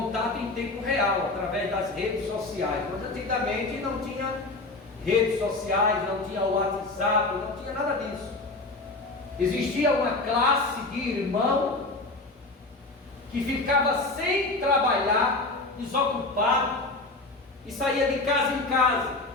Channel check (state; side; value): quieter; right; 3.2 dB